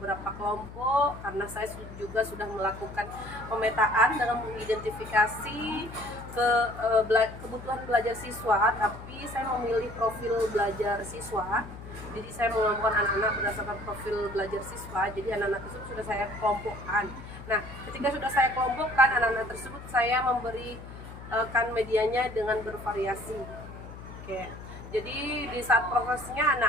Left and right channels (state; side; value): noise; left; hum, 13 dB below the sound